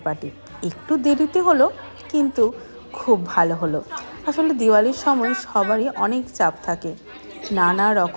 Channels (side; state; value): both; inverted; correlation -1.00